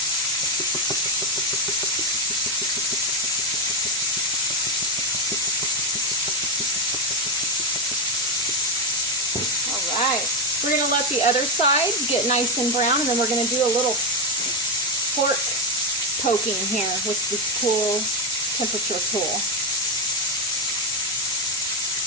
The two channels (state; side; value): normal; both; correlation 0.09